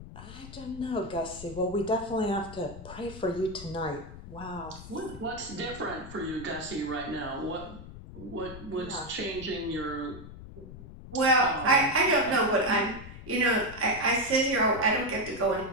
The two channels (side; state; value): left; noise; rumble, 14 dB below the sound